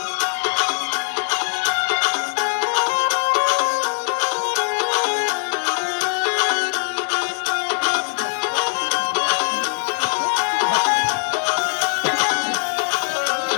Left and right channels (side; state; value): right; silent; 59 dB below the other